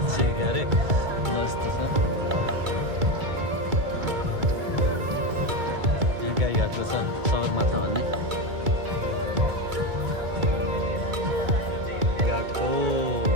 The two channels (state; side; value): late; left; 2.3 ms